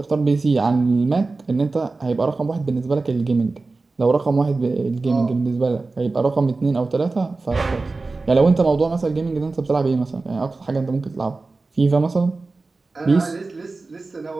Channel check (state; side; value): quieter; left; 3.6 dB